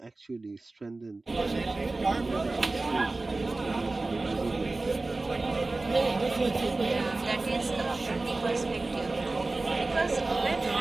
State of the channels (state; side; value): quieter; left; 3.2 dB